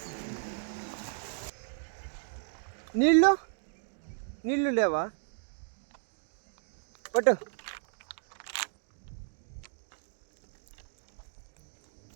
నీళ్ళు నీళ్ళు లేవా పట్టు.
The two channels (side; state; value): left; silent; digital silence